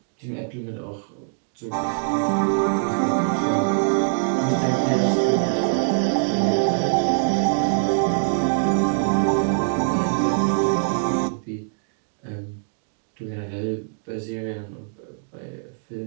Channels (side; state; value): left; silent; digital silence